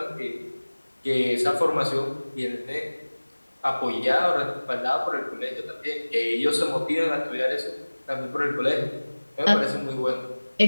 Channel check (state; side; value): inverted; both; correlation -1.00